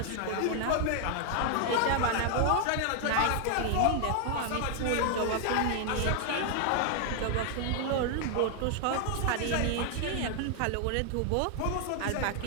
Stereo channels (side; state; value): both; different; correlation 0.00